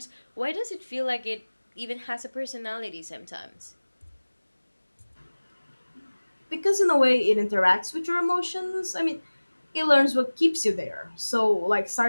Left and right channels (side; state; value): both; inverted; correlation -1.00